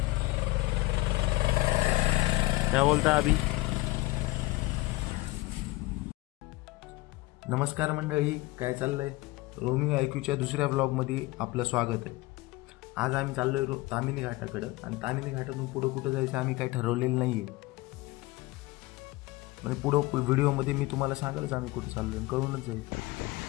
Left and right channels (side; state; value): right; quieter; 21.3 dB